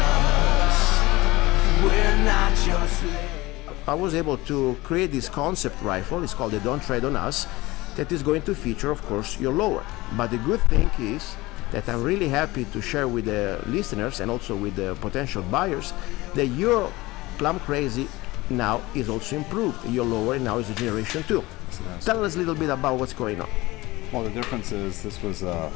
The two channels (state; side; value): quieter; right; 20.3 dB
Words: we're not your slave. I was able to create this concept rifle, it's called the Don't Tread on Us, that is going to feature, of course, your lower. But the good thing is that I'm really happy to share with the listeners and also with the potential buyers that your Plumcrazy now is also improved. Your lower now is a generation 2. Tell us a little bit about what's going on. Well, the difference is this was